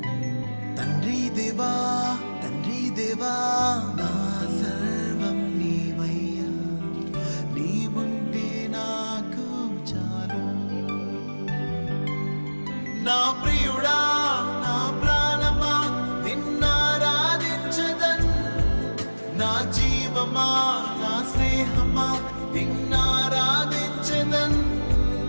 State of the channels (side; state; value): both; inverted; correlation -1.00